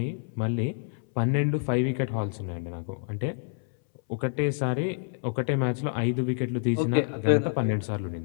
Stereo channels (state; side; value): silent; right; 59 dB below the other